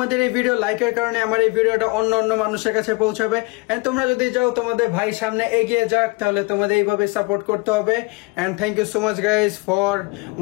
এই ভিডিও লাইকের কারণে আমার এই ভিডিওটা অন্য অন্য মানুষের কাছে পৌঁছাবে। এন্ড তোমরা যদি যাও তোমাদের ভাই সামনে এগিয়ে যাক, তাহলে তোমাদের এইভাবে সাপোর্ট করতে হবে। And thank you so much guys for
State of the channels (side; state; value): right; quieter; 26.9 dB